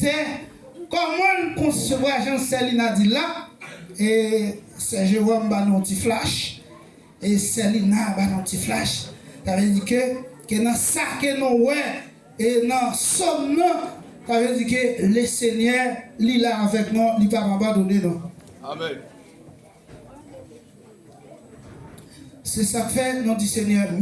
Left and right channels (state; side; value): identical; both; correlation 1.00